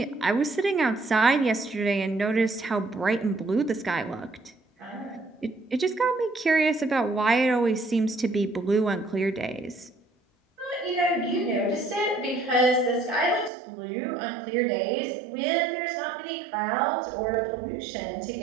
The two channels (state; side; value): drops out; left; at 13.5 s